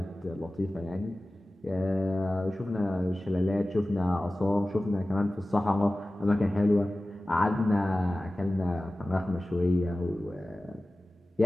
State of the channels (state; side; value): normal; both; correlation 0.96